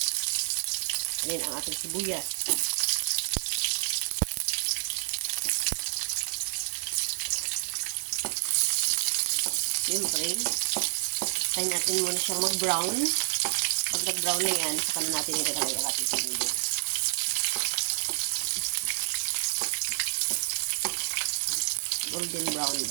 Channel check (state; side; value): silent; left; digital silence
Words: Ayan ang ating sibuyas. Siyempre, tayo natin muna siyang mag-brown. Pag nag-brown na yan, saka na natin ilalagay ang ating sibuyas. Golden brown